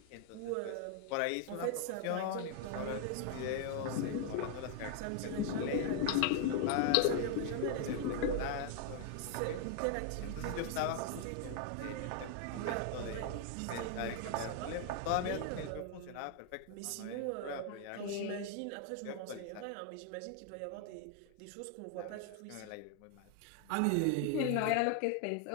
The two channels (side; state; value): both; different; correlation 0.00